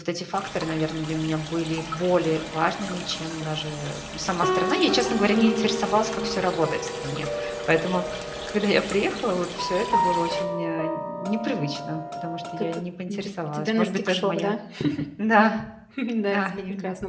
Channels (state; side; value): identical; both; correlation 1.00